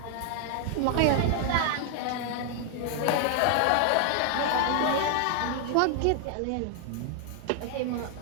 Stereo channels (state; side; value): different; both; correlation 0.00